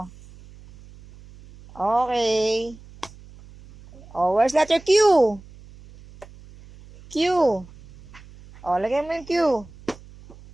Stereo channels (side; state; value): right; noise; hum, 21 dB below the sound